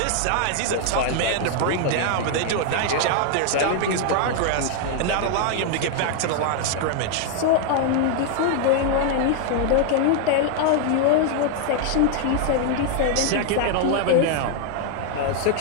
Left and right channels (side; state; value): both; different; correlation 0.00